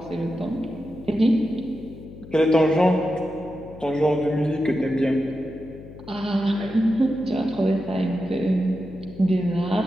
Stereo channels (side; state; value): left; noise; hum, 16 dB below the sound